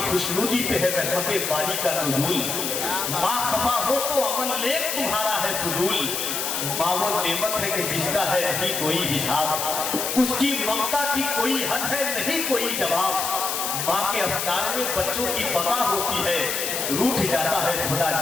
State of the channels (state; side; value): noise; left; hiss, 2 dB below the sound